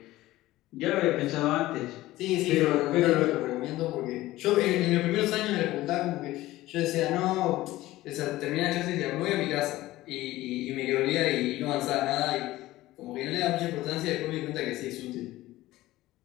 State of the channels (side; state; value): right; quieter; 16.9 dB